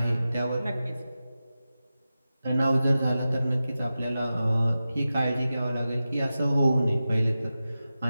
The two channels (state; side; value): inverted; both; correlation -0.93